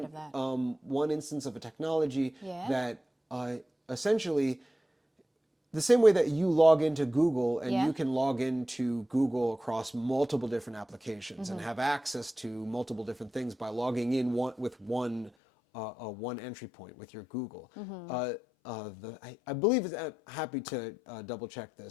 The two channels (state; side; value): drops out; right; at 15.3 s